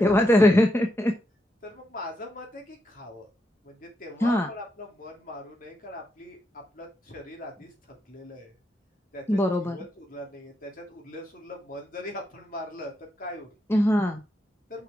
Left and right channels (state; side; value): normal; both; correlation 0.82